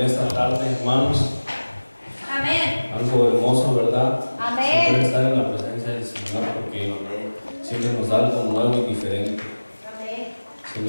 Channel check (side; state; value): both; inverted; correlation -1.00